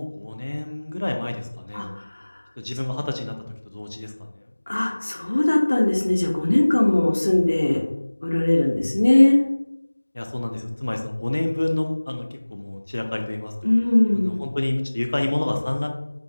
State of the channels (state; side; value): inverted; both; correlation -1.00